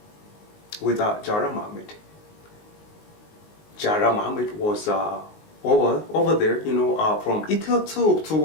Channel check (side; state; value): right; late; 19 ms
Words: with Jara Mohammed. Jara Mohammed was over there, from ETL2